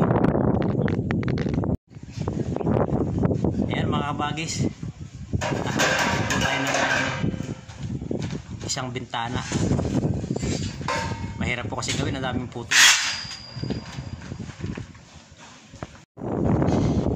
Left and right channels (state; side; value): identical; both; correlation 1.00